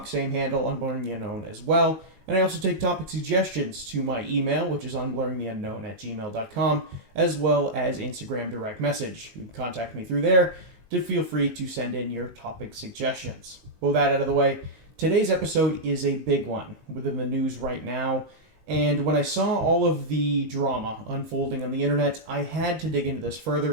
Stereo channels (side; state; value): left; late; 19 ms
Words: same handle, Unblurring the Unknown as well. And I also take topic suggestions to my email, which is unblurringtheunknown@gmail.com, as well as Instagram direct message. You can contact me through there to feel free to send in your topic suggestions. With that out of the way, today's episode is a big one within the news right now. And when I saw all of the drama unfolding on the internet, I had to dig into this